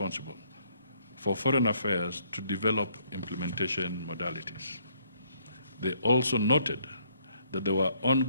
for foreign affairs to develop implementation modalities. They also noted that there were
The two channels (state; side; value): inverted; both; correlation -0.68